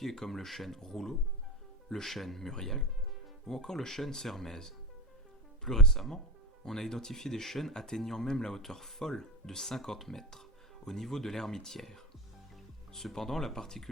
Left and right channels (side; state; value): both; normal; correlation 0.21